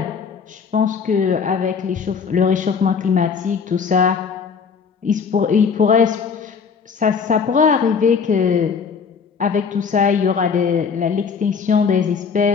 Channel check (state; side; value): quieter; right; 6.0 dB